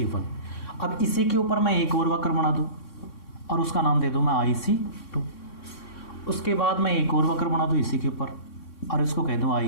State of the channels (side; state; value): right; late; 3.6 ms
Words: अब इसी के ऊपर मैं एक और वक्र बना दूं और उसका नाम दे दूं मैं IC2। उसके बाद मैं एक और वक्र बना दूं इसी के ऊपर और इसको कह दूं